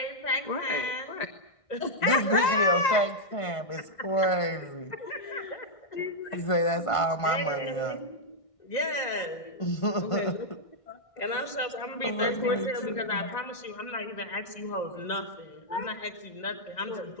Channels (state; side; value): late; right; 1.6 ms